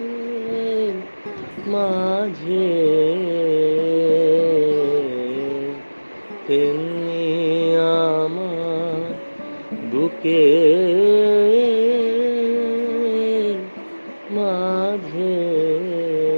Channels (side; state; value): both; inverted; correlation -1.00